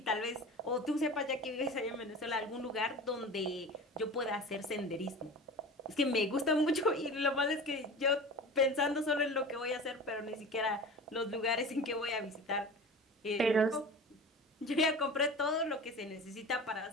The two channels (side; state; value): both; normal; correlation 0.34